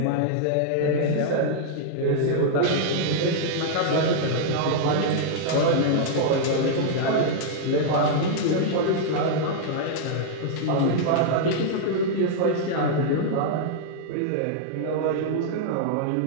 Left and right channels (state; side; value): different; both; correlation -0.01